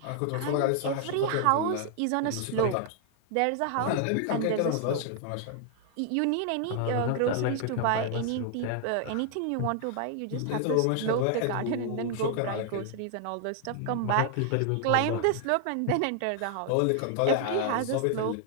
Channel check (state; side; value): different; both; correlation 0.00